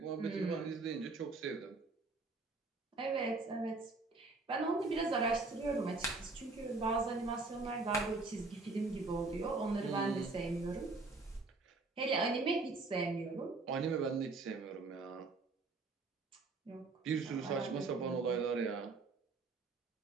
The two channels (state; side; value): quieter; left; 3.7 dB